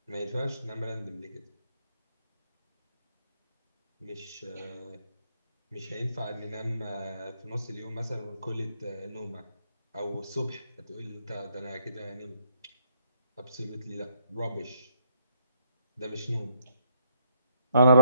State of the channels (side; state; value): both; inverted; correlation -0.73